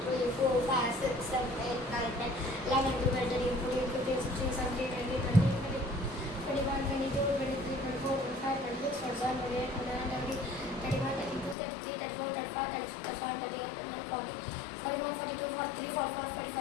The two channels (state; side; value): drops out; right; at 11.6 s